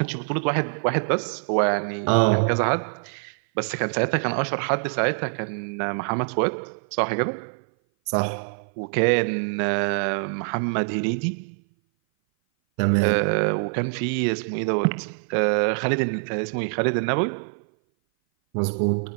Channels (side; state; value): left; silent; 57 dB below the other